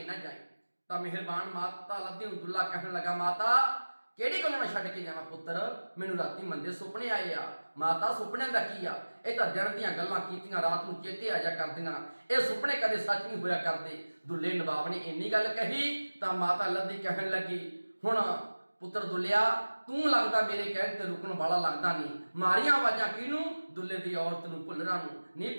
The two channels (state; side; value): inverted; both; correlation -1.00